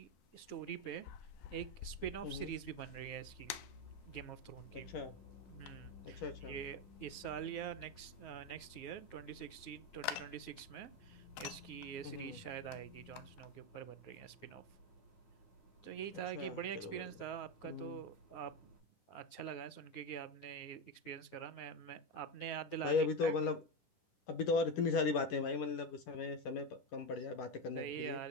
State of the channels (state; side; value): late; right; 9.4 ms